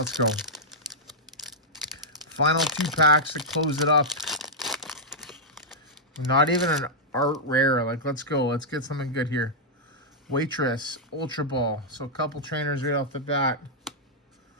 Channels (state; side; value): normal; both; correlation -0.07